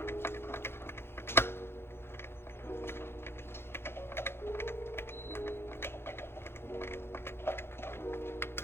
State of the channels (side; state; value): right; late; 0.11 ms